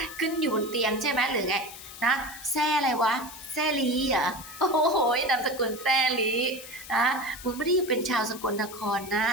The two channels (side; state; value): left; noise; hiss, 14 dB below the sound